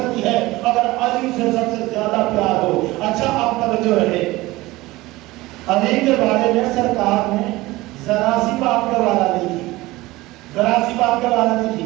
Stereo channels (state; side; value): quieter; left; 19.5 dB